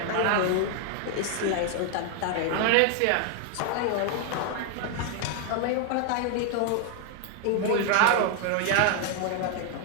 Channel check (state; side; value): different; both; correlation 0.00